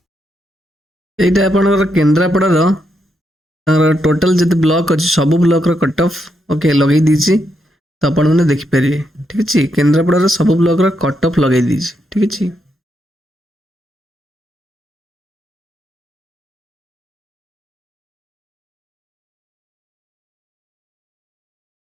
एटा आपन केंद्रापड़ा रो टोटल जिते ब्लॉक अच्छी सब ब्लॉक रो कट ऑफ ओके लगे दीची तो आपण मैंने देखिपारे ठीक अच्छे केन्द्रापड़ा सब ब्लॉक रो कट ऑफ लगे दीची ठीक अच्छे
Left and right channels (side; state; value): both; normal; correlation 0.80